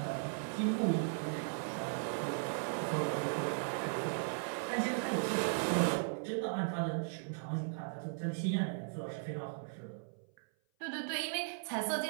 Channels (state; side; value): silent; left; 53 dB below the other